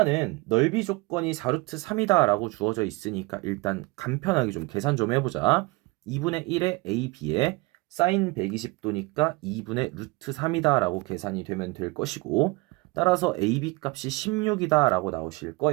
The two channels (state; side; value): quieter; left; 24.1 dB